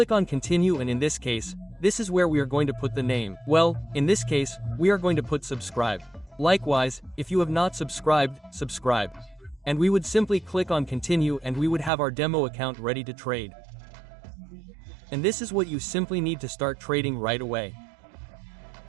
on continue, and in this case, this is where we are going to put the name. Well, in this case, we are going to put subscribe. Likewise, if you have not subscribed, subscribe. And we would simply click on continue, and we would have our demo account ready to trade. And this is what you simply need to start trading right away.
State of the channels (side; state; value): left; drops out; at 11.9 s